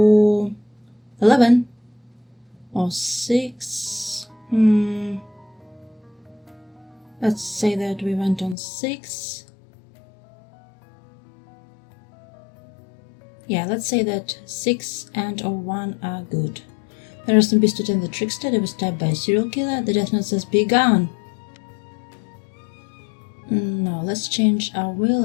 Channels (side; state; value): right; drops out; at 8.6 s